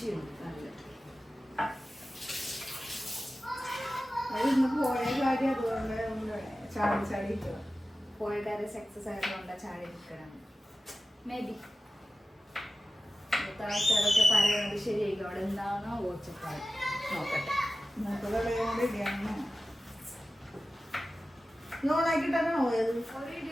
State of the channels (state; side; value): normal; both; correlation 0.95